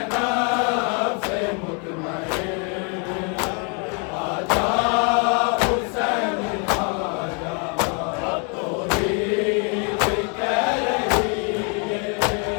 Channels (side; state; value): right; quieter; 37.0 dB